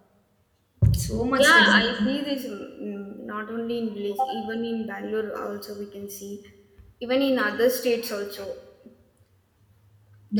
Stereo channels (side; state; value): both; identical; correlation 1.00